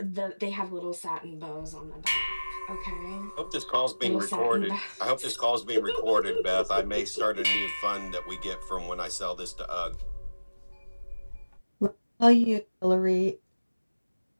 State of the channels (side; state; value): both; inverted; correlation -1.00